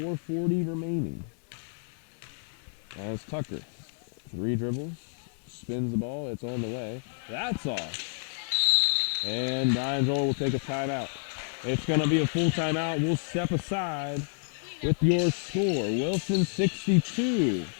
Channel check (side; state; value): right; silent; 58 dB below the other